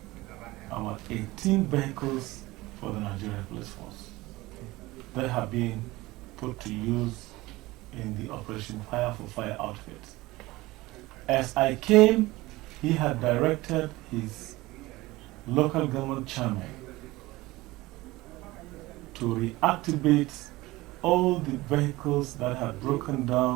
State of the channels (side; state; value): left; quieter; 19.7 dB